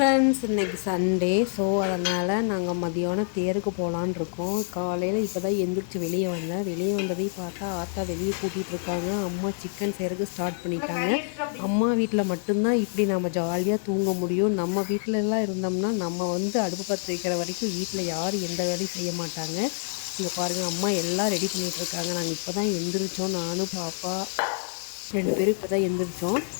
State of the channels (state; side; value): silent; right; 60 dB below the other